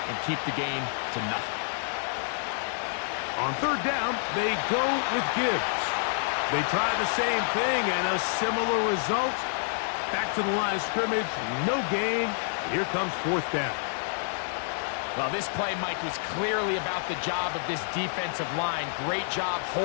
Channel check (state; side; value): silent; right; digital silence